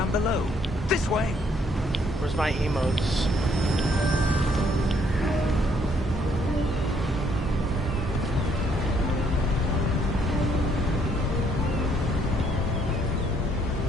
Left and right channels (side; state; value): both; normal; correlation 0.68